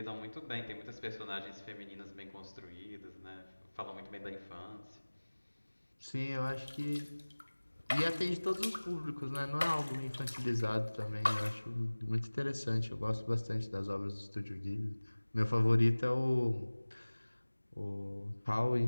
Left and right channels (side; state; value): both; inverted; correlation -1.00